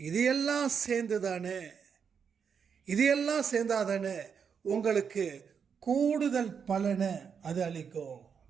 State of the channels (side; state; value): left; quieter; 6.7 dB